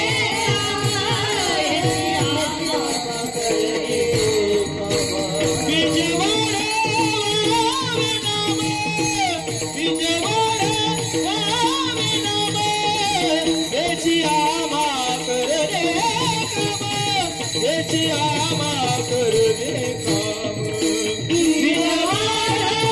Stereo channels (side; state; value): right; noise; hum, 21 dB below the sound